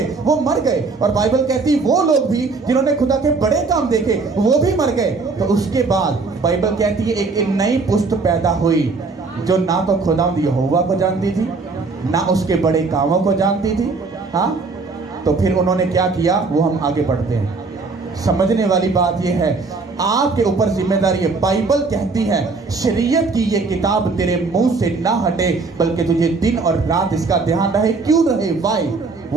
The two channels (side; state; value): left; quieter; 4.1 dB